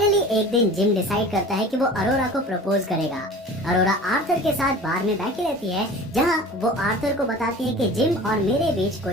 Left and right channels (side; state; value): both; normal; correlation 0.40